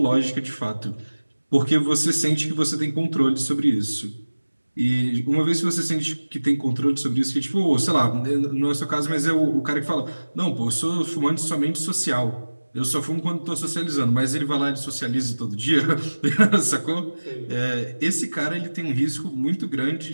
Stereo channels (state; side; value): inverted; both; correlation -1.00